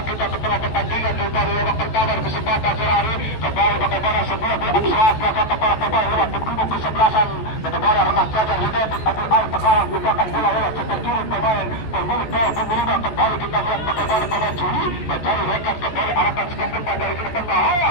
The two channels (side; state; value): right; late; 14 ms